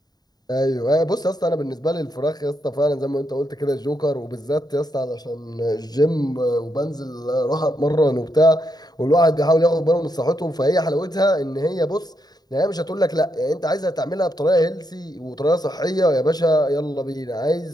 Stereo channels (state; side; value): late; right; 0.19 ms